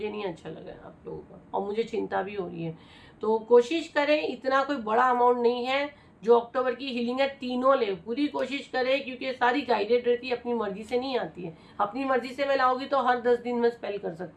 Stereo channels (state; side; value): identical; both; correlation 1.00